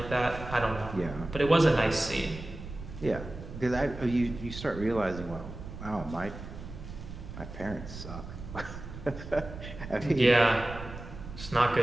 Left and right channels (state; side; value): noise; right; rumble, 11 dB below the sound